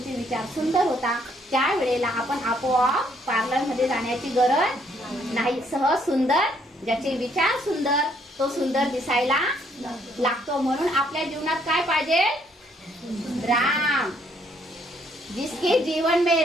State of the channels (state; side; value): normal; both; correlation 0.68